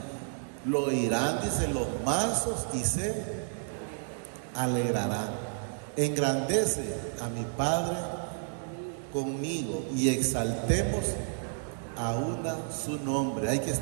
Lo oirán, dice, los mansos y se alegrarán. Engrandece a mi Padre conmigo y exaltemos aún su nombre. Hay que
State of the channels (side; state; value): left; silent; digital silence